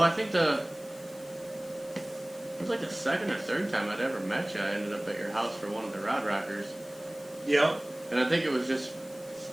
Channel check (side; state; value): left; noise; hiss, 22 dB below the sound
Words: I think it was like the second or third time I'd ever met you. I ended up at your house for one of the Rod Rockers. Yep. And I think